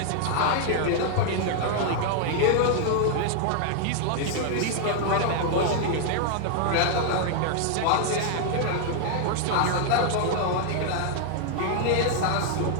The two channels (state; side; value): different; both; correlation 0.00